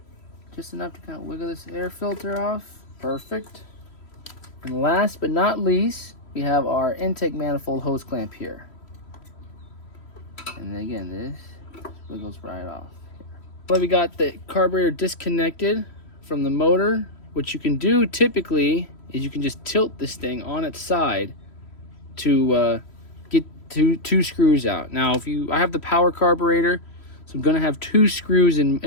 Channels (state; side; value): late; right; 3.1 ms